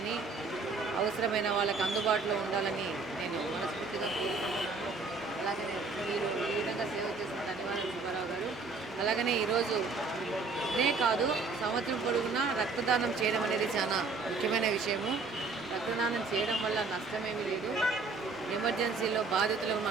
అవసరమైన వాళ్ళకి అందుబాటులో ఉండాలని నేను మనస్ఫూర్తిగా కోరుకుంటున్నాను. అలాగనే మీరు ఈ విధంగా సేవ చేసిన ధన్యవాదాలు సుబ్బారావు గారు. అలాగనే ఈరోజు ఇదే కాదు, సంవత్సరం పొడవునా రక్తదానం చేయడం అనేది చాలా ముఖ్యమైన విషయము. రక్తదానం చేయడం వల్ల నష్టమేమీ లేదు. ఎమర్జెన్సీలో బాధితులకు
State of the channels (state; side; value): quieter; left; 4.2 dB